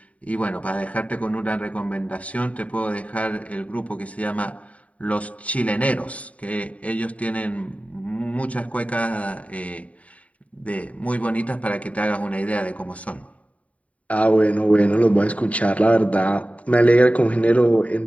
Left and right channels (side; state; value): right; late; 0.067 ms